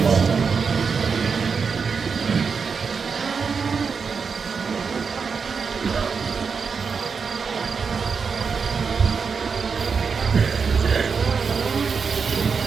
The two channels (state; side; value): quieter; left; 5.6 dB